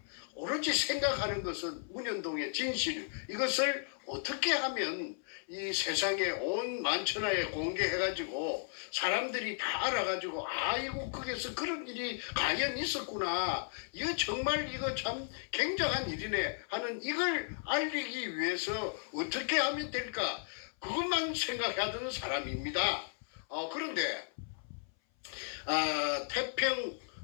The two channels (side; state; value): right; silent; 54 dB below the other